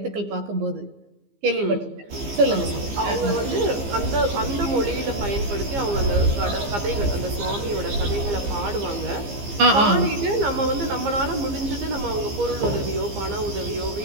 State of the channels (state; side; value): late; left; 15 ms